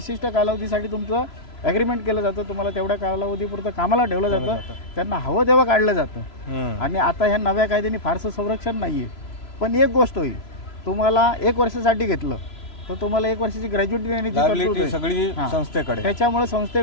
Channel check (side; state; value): right; late; 3.0 ms